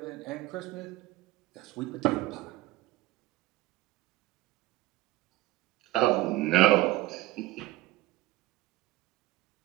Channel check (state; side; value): quieter; left; 17.6 dB